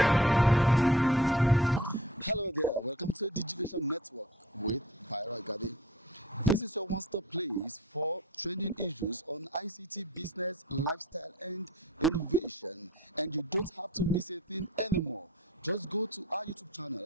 Hello there, welcome to Digivation Network with Byra Gadi. This is your one-stop place for trending issues on ICT, business, lifestyle, and innovation. And you don't have to miss a thing anymore. Just go to our YouTube channel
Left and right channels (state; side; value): normal; both; correlation 0.45